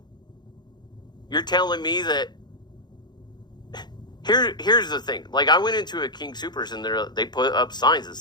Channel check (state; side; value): late; right; 0.21 ms